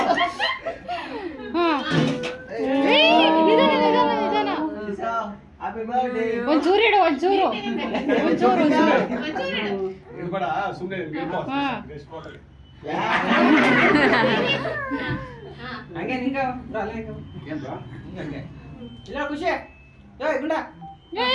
ಒಂಚೂರು ಇಡು ಒಂಚೂರು ಒಂಚೂರು ಇರ್ಬೇಡ ಸುಮ್ಮನೆ ಹಂಗೆ ನಿಂಗ ಇಲ್ಲ ಖುಷಿ ಗುಂಡ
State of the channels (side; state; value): both; identical; correlation 1.00